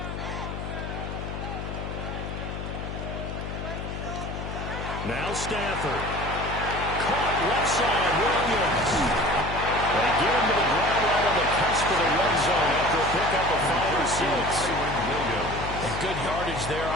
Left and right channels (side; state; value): left; noise; hum, 6 dB below the sound